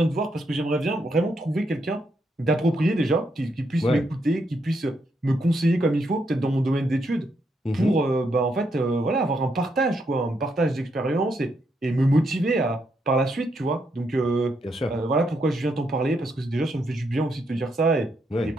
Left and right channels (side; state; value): both; normal; correlation 0.78